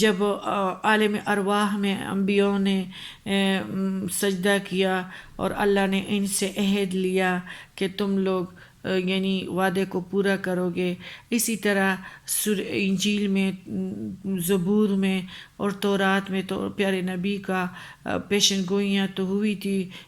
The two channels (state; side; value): identical; both; correlation 1.00